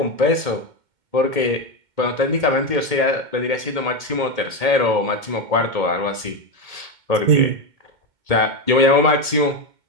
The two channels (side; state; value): left; late; 2.1 ms